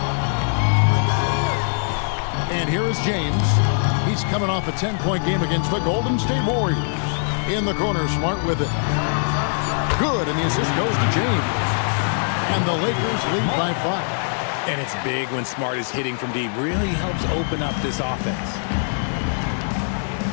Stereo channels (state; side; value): silent; right; 64 dB below the other